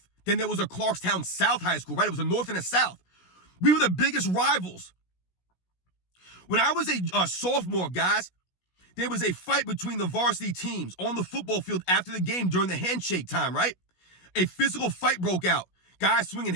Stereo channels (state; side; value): late; right; 16 ms